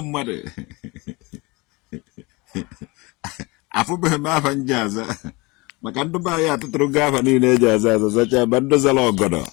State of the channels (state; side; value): quieter; right; 25.0 dB